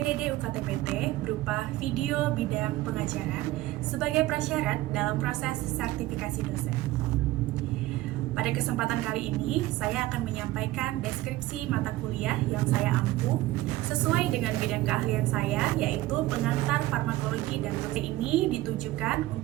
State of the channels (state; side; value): quieter; left; 17.0 dB